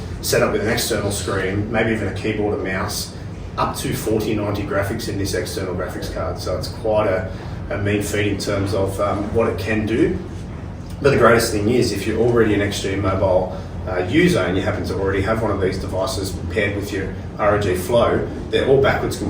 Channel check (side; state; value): both; identical; correlation 1.00